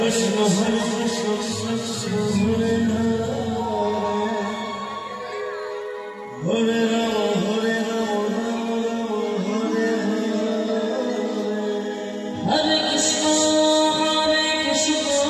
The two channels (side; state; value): both; identical; correlation 1.00